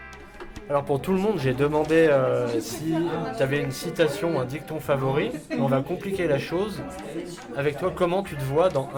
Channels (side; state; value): both; identical; correlation 1.00